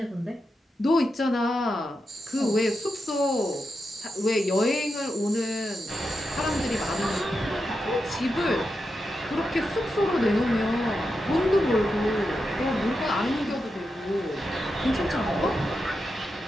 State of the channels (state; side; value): normal; both; correlation 0.87